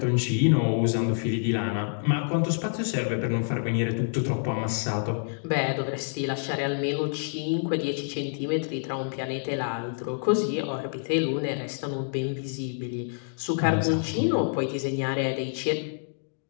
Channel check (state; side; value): silent; right; digital silence